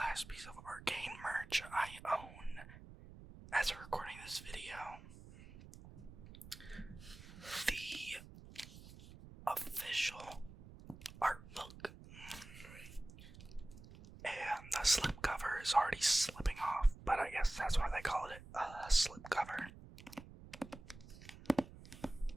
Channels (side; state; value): right; noise; rumble, 16 dB below the sound